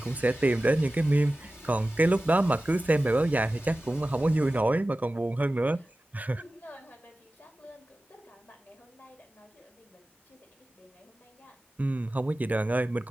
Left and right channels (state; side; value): normal; both; correlation 0.96